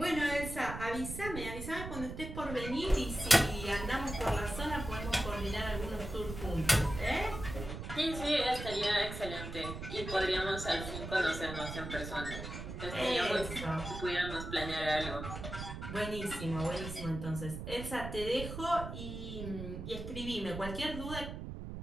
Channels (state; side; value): noise; right; rumble, 8 dB below the sound